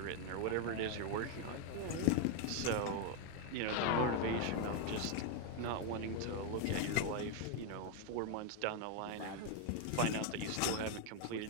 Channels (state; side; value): different; both; correlation 0.01